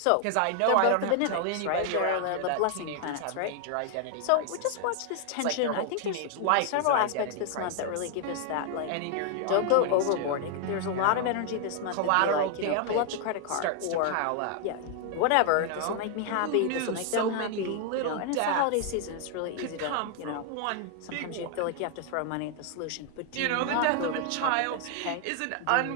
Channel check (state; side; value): different; both; correlation 0.00